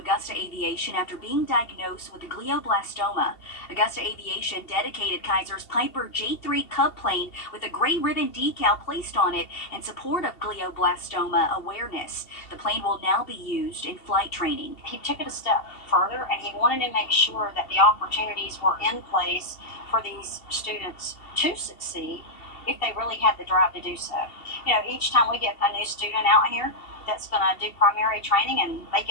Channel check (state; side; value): late; right; 2.7 ms